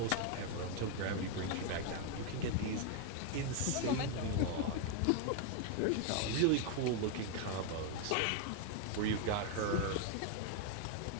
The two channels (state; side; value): different; both; correlation 0.01